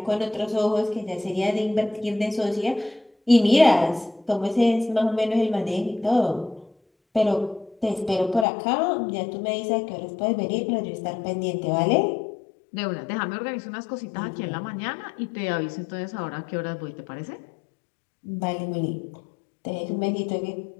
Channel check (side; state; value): right; drops out; at 8.5 s